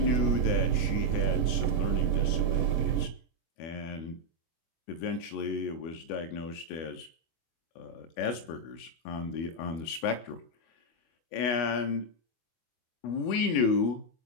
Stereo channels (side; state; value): right; late; 24 ms